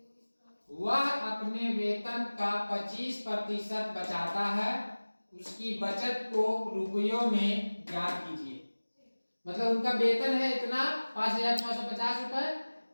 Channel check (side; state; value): both; inverted; correlation -1.00